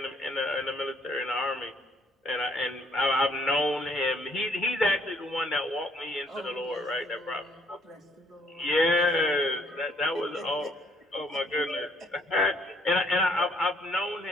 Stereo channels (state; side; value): normal; both; correlation 0.65